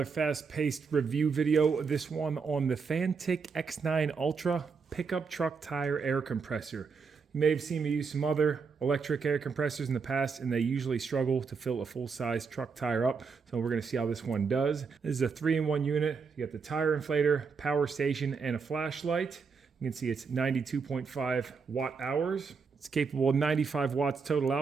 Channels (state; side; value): quieter; left; 5.3 dB